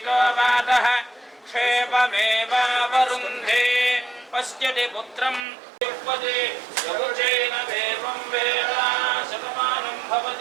वातः क्षेममेवावरुन्धे पश्यति पुत्रं युष्पति यवचेन देवं वेदा शतमानं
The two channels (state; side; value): drops out; left; at 5.5 s